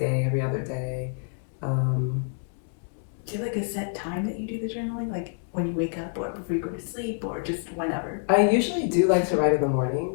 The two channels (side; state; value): right; silent; 60 dB below the other